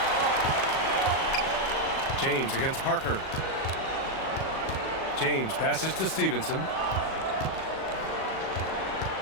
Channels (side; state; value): right; late; 37 ms